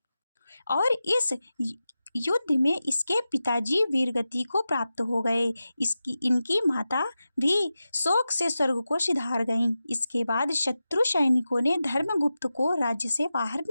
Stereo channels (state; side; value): inverted; both; correlation -0.93